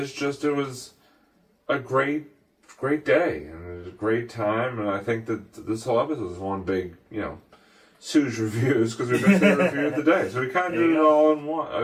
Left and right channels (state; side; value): identical; both; correlation 1.00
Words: just, it was a great day, and it was a great time, and I think that this whole episode is one big, Sue's reviews, because we missed the review of the day. So we kind of did it all in